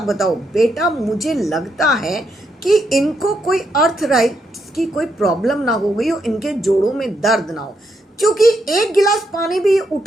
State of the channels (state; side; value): normal; both; correlation 0.79